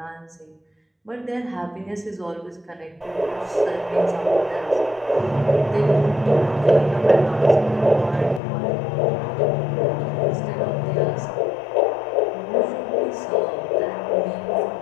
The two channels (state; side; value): drops out; right; at 8.4 s